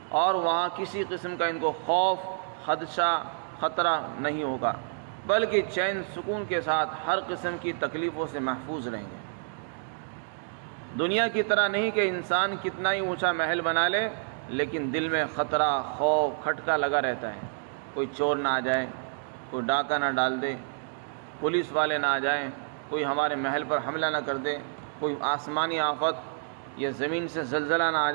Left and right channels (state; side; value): silent; left; digital silence